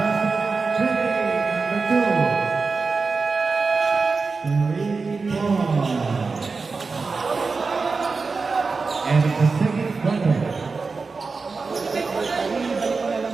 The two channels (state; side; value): quieter; left; 4.4 dB